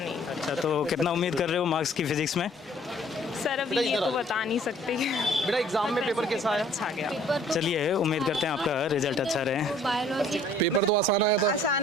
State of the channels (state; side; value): normal; both; correlation 0.56